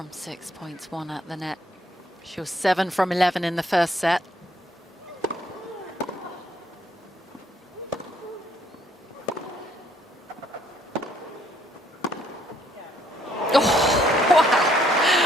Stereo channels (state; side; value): normal; both; correlation 0.67